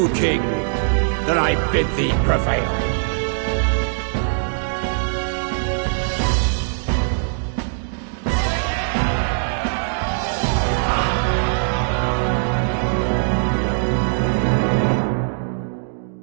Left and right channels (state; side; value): silent; left; digital silence